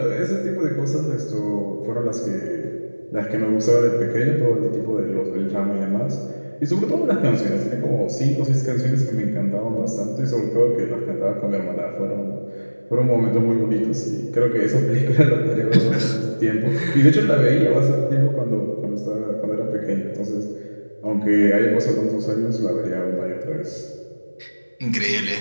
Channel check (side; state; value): both; inverted; correlation -1.00